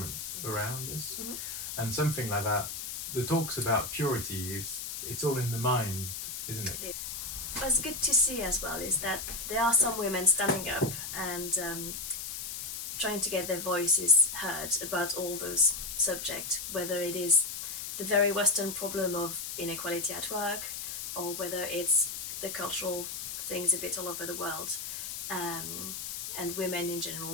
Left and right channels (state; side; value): noise; left; hiss, 6 dB below the sound